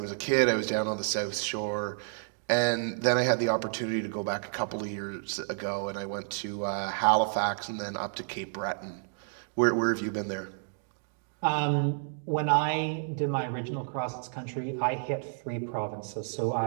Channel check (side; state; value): left; silent; digital silence